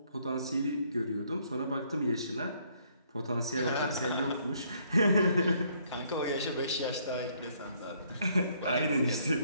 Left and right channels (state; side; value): inverted; both; correlation -0.67